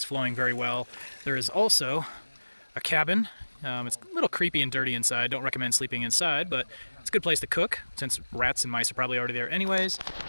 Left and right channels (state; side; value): inverted; both; correlation -1.00